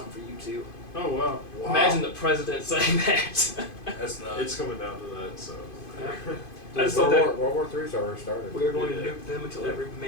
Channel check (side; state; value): right; late; 2.5 ms